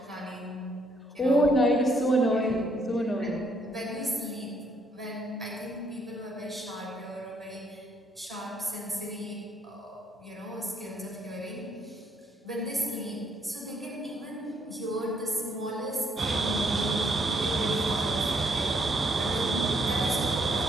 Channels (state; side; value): normal; both; correlation 0.70